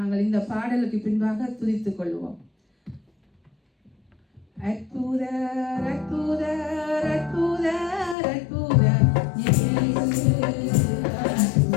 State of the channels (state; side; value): drops out; right; at 8.2 s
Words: இந்த பாடலுக்கு பின்பாக துதித்துக் கொள்வோம். அற்புதர் அற்புதர் அற்புதர் அற்புதர் இயேசு